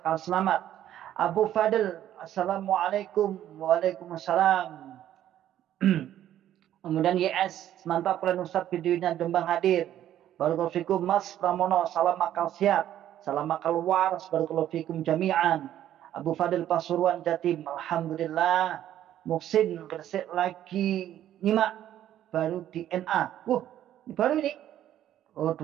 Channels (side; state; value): left; quieter; 11.8 dB